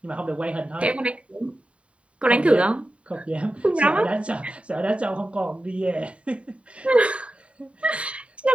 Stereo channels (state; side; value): late; left; 0.062 ms